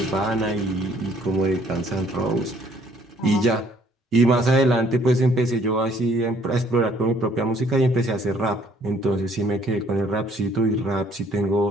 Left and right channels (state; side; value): normal; both; correlation 0.61